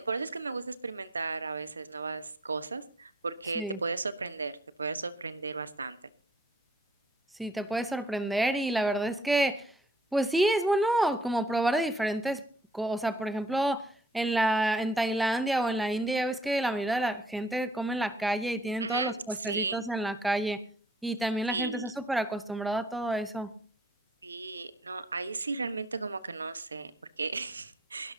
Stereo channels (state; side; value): normal; both; correlation 0.60